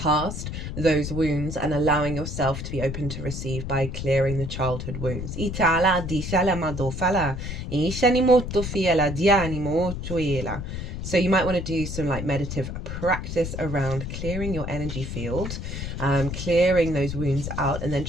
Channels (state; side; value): noise; left; rumble, 6 dB below the sound